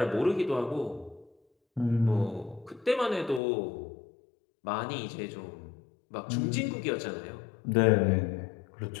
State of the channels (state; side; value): drops out; right; at 3.4 s